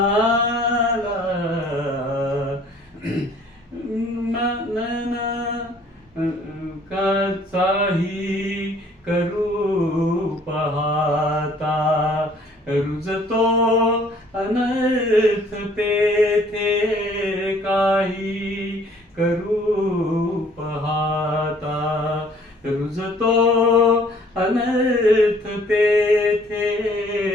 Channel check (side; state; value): both; normal; correlation 0.57